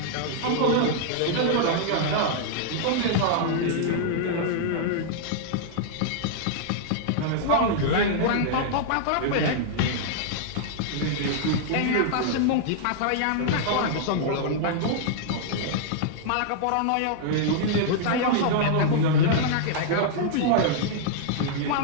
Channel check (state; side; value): different; both; correlation -0.01